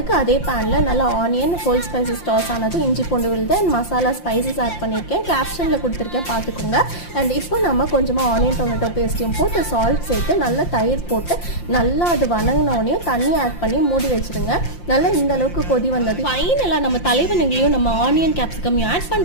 அதே பேன்ல நல்லா ஆனியன், ஹோல் ஸ்பைசஸ் டாஸ் ஆனது, இஞ்சி பூண்டு விழுது அண்ட் மசாலா ஸ்பைசஸ் ஆட் பண்ணியிருக்கேன். கேப்ஷன்ல கொடுத்துருக்கேன், பார்த்துக்கோங்க. அண்ட் இப்போ நம்ம கொஞ்சமாக ஆனியன் டொமேட்டோ பேஸ்ட்டையும் போட்டு சால்ட் சேர்த்து நல்லா தயிர் போட்டு நல்லா அது வணங்கினோடனையும் தண்ணி ஆட் பண்ணி மூடி வச்சுருங்க. நல்லா இந்த அளவுக்கு கொதி வந்தது ஃபைனலாக நம்ம தலைவனுங்களையும் நம்ம ஆனியன் கேப்சிகமையும் ஆட்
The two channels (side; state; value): right; late; 5.7 ms